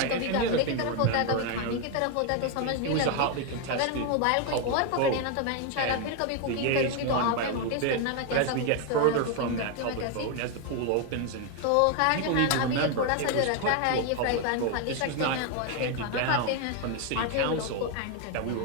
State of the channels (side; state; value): both; different; correlation 0.01